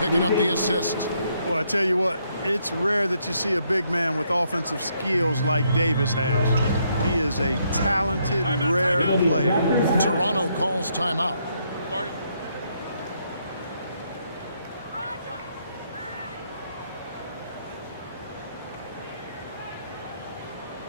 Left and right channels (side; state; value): both; inverted; correlation -0.73